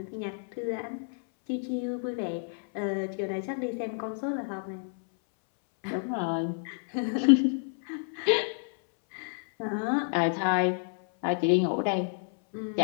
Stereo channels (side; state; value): right; silent; 58 dB below the other